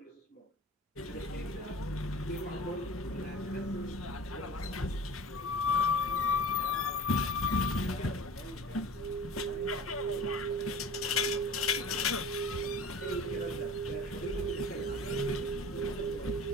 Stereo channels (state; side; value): normal; both; correlation 0.40